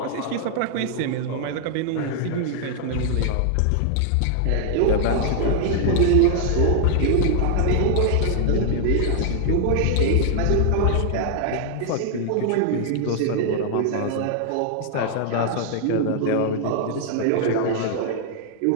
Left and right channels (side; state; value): both; different; correlation 0.00